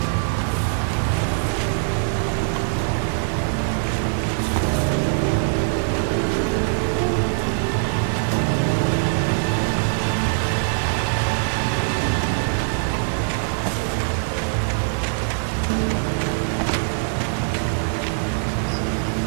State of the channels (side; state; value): left; silent; digital silence